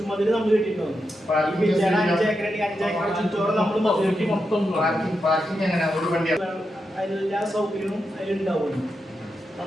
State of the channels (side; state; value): both; normal; correlation 0.86